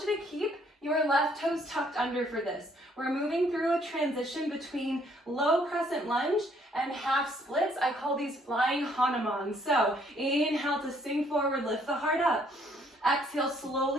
to keep your left toes tucked under for this. We're moving through a transition between low crescent lunge and half splits. I call these flying hanuman. So inhale to sink forward, lift the heart up. Exhale,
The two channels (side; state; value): both; normal; correlation 0.65